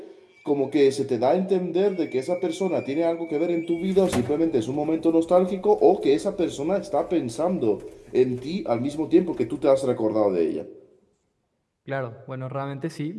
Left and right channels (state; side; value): identical; both; correlation 1.00